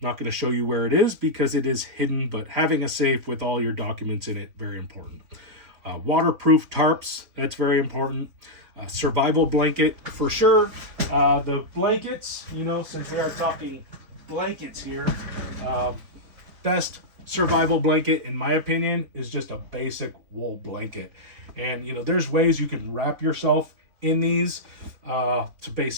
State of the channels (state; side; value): late; left; 4.2 ms